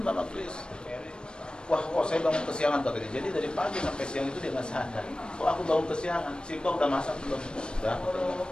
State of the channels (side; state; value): right; late; 0.052 ms